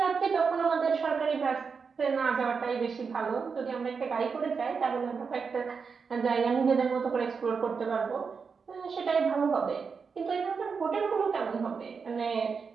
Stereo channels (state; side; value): quieter; left; 5.5 dB